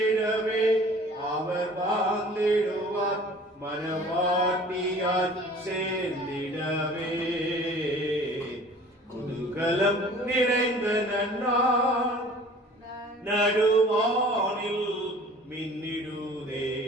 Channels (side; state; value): both; normal; correlation 0.47